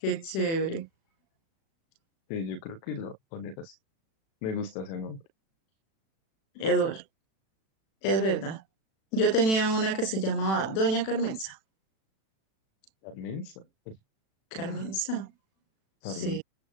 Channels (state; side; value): late; right; 36 ms